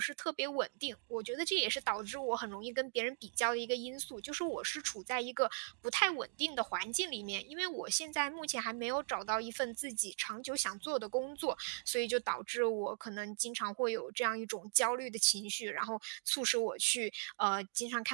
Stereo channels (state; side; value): silent; left; digital silence